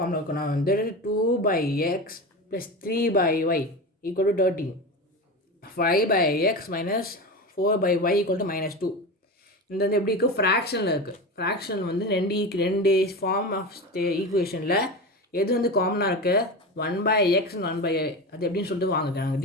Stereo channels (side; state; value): both; normal; correlation 0.25